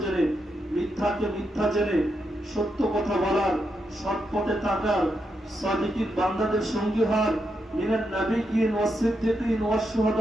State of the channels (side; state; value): both; normal; correlation 0.83